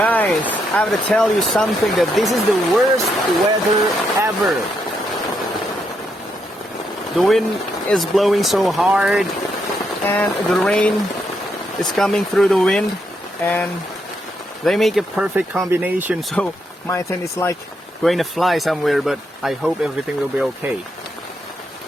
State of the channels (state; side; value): normal; both; correlation 0.79